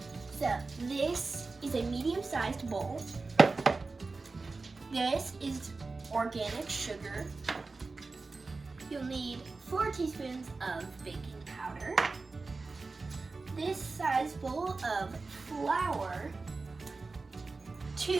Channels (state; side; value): quieter; left; 3.9 dB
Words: So this is a medium-sized bowl. This is organic sugar. You'll need 4 teaspoons of baking powder. This size bowl of flour,